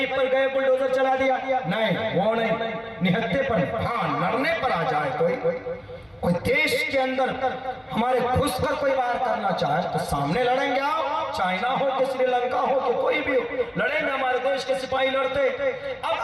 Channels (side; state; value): both; identical; correlation 1.00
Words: पर गए बुलडोजर चला दिया, नहीं, वो नहीं, निहत्ते पर, हाँ लड़ने पर आ जाए कोई देश के अंदर हमारे घुसकर कोई वार करना चाहे तो सामने लड़ेंगे। आओ, चाइना हो कि श्रीलंका हो कि कोई भी हो, लड़ेंगे। हमारे देश के सिपाही लड़ते। अब